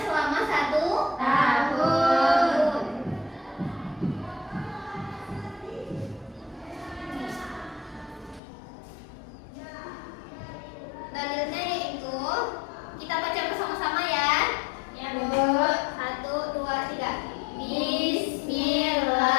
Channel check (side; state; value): right; drops out; at 8.4 s